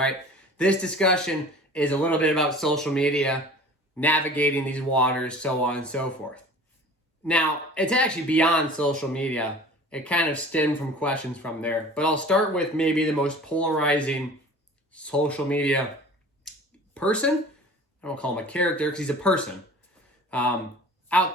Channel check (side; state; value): both; normal; correlation 0.43